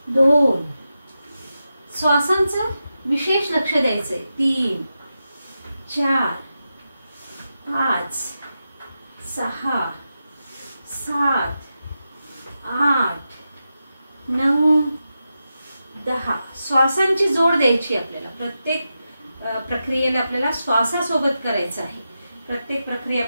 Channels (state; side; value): inverted; both; correlation -0.89